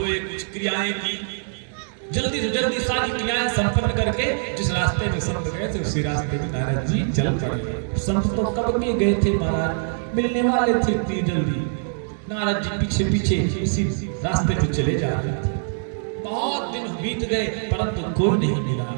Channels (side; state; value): left; silent; digital silence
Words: कुछ क्रियाएं की, जल्दी से जल्दी सारी क्रियाएं संपन्न करके जिस रास्ते में संत गए थे उसी रास्ते में नारद जी चल पड़े। संत तो कब के गए थे महाराज, मिलने वाले थे इतनी जल्दी। नारद जी पीछे पीछे इसी रास्ते पे चले जा रहे थे। बहुत दिन बीत गए परंतु कोई नहीं मिला।